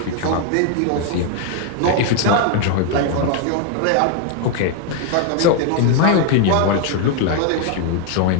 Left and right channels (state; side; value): different; both; correlation 0.00